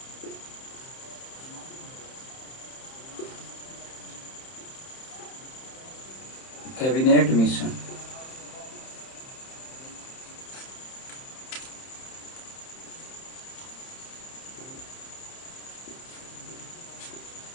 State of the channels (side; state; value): right; late; 30 ms